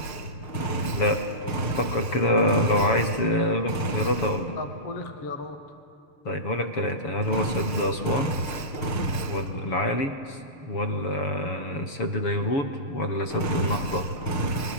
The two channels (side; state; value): right; late; 6.7 ms